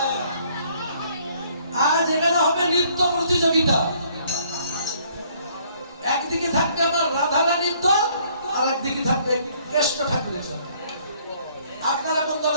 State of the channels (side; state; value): both; inverted; correlation -0.63